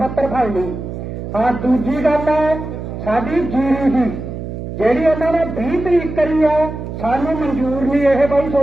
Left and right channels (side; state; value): right; noise; hum, 8 dB below the sound